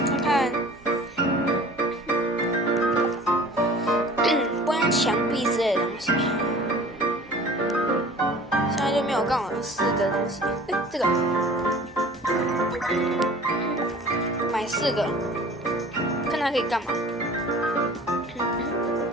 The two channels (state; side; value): noise; right; hum, 26 dB below the sound